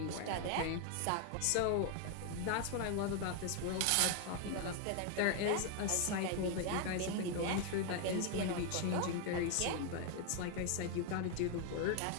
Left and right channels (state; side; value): different; both; correlation 0.01